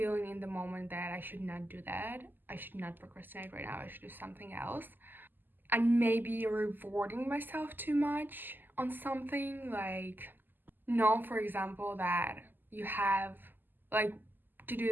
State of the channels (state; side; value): late; left; 0.090 ms